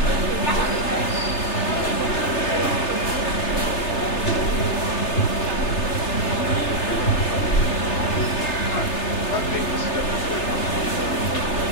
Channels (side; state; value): right; late; 3.3 ms